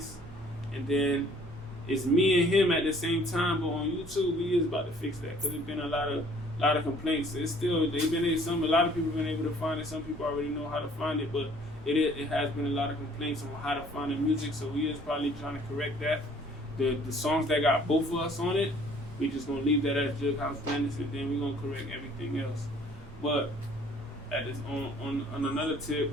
and then it's me and him at the same time. But on YouTube, we is about to fix that because there's been a lot of complaints. It's still a lot of people been able to find it. Some people already know how to find it, but it has been a lot of complaints on how to find the music. So we is probably trying to correct that. The songs that got both of us on it, we just gonna leave that as Jug House Bandits, and then we gonna correct everything else. But at this on another tip,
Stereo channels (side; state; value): both; normal; correlation 0.57